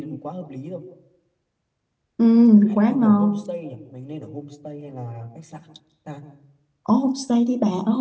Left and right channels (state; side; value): identical; both; correlation 1.00